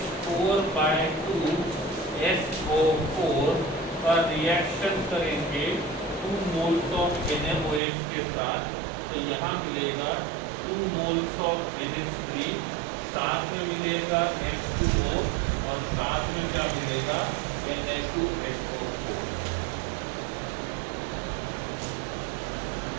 का रिएक्शन करेंगे 2 मोल्स ऑफ NaOH के साथ, तो यहाँ मिलेगा 2 मोल्स ऑफ NH3, साथ में मिलेगा H2O, और साथ में क्या मिलेगा, Na2SO4।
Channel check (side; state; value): left; drops out; at 7.8 s